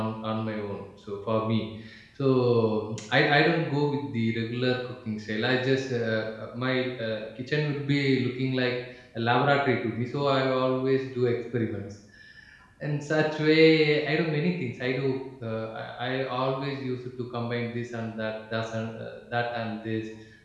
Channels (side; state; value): both; identical; correlation 1.00